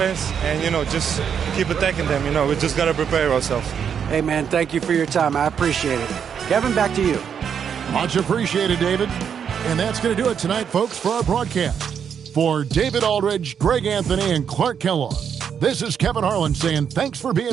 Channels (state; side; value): quieter; left; 7.6 dB